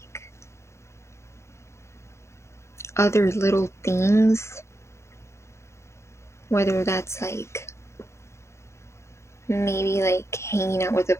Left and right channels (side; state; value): right; late; 0.13 ms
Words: other little things, whether that's like maybe like hanging out with a